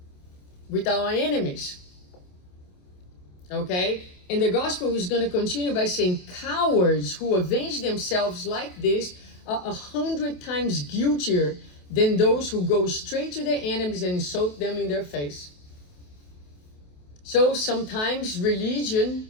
with our enemies. Okay? And the gospel is going to continue by saying cowards who avenge themselves like this are 100 times guiltier than those who go straight to their enemies and insult them in their face. So sometimes religion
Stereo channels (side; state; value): right; late; 28 ms